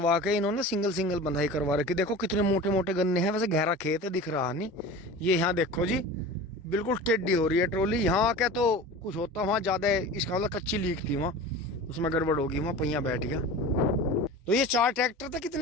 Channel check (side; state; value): both; normal; correlation 0.35